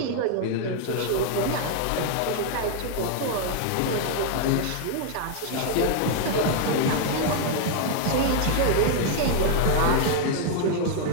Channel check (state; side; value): different; both; correlation 0.00